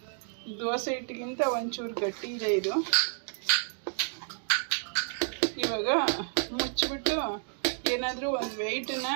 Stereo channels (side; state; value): left; silent; 58 dB below the other